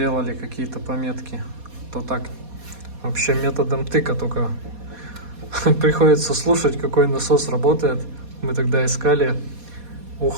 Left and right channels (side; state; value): left; late; 4.2 ms